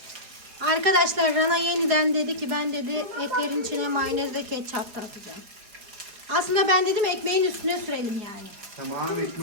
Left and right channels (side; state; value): left; late; 4.8 ms